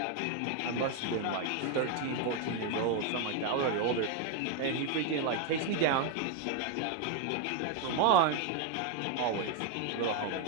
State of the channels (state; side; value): different; both; correlation 0.01